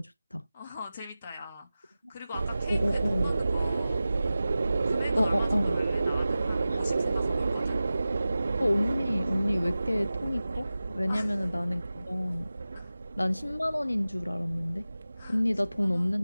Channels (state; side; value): inverted; both; correlation -0.96